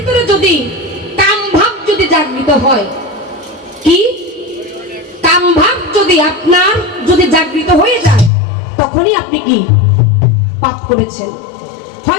যদি কাম ভাব যদি জাগৃত হয়, কি কাম ভাব যদি আপনার যদি জাগৃত হয়ে যায়, তখনই আপনি কি পাপ করেছেন।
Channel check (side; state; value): right; drops out; at 8.3 s